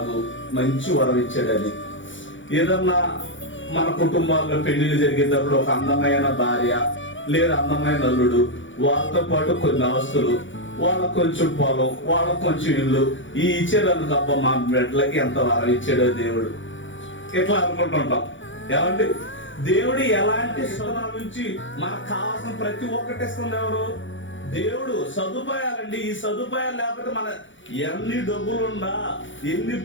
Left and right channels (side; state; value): right; late; 0.56 ms